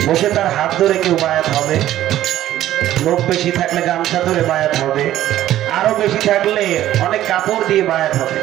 বসে তার হাত ধরে কেউ বায়াত হবে, লোক বেশি থাকলে গামছা ধরে বায়াত হবে, আরো বেশি থাকলে অনেক কাপড় দিয়ে বায়াত হবে।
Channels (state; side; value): quieter; left; 13.2 dB